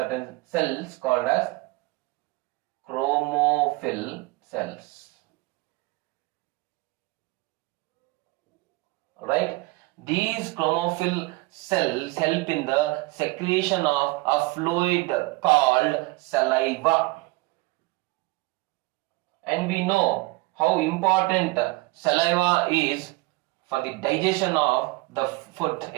cells called as chromophil cells. Right? These chromophil cells help in the secretion of a fluid called saliva. And we know how important saliva is for the digestion of the food,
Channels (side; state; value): left; quieter; 22.4 dB